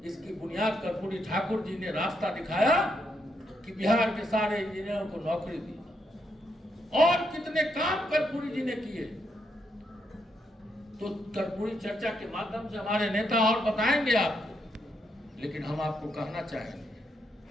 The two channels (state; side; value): normal; both; correlation 0.79